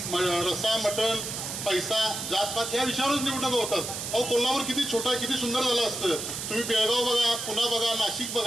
रस्सा, मटण, पैसा, जातपात या विषयावरच निवडणुका होतात. अहो, कोल्हापूर किती छोटा, किती सुंदर झालं असतं. तुम्ही बेळगाव बघा, पुणे बघा, नाशिक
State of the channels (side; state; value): right; noise; hiss, 5 dB below the sound